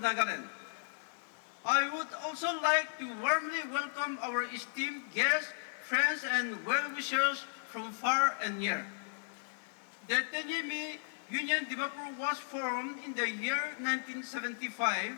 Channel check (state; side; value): silent; right; digital silence